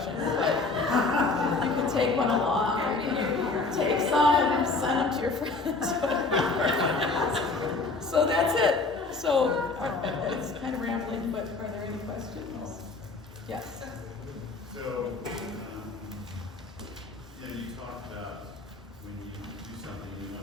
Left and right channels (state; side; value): quieter; right; 3.7 dB